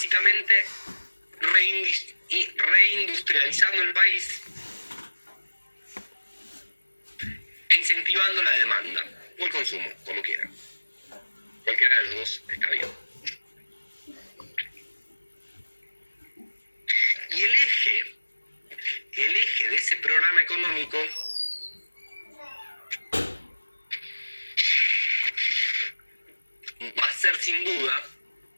reindustrializando el país e incentivando la demanda o el consumo, como quieran. Cualquiera de los dos está bien. Y el eje de ese programa económico va a ser sin duda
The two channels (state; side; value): inverted; both; correlation -1.00